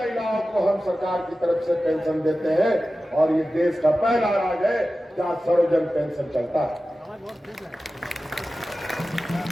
को हम सरकार की तरफ से पेंशन देते हैं और ये देश का पहला राज्य है जहां सर्वजन पेंशन चलता है।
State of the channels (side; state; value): both; normal; correlation 0.94